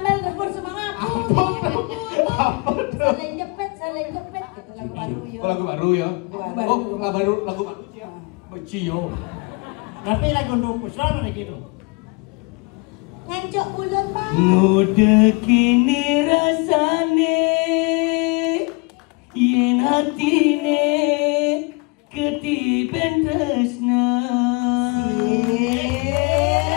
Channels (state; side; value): quieter; right; 29.7 dB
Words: rebut semangat. Apa tuh? Saling jepit. Gitu lagu baru yo. Oh, lagu baru ya? Oh, lagu baru. Beci yo. Tapi lagu untuk puslan ada gitu. Ngancok bulan bon. Muda kini rasane yen hatine ketiben tresna.